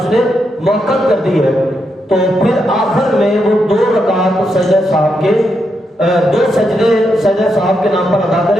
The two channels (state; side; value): normal; both; correlation 0.82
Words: نے موقت کر دی ہے، تو پھر آخر میں وہ 2 رکعت سجدہ صاحب کے 2 سجدے سجدہ صاحب کے نام پر ادا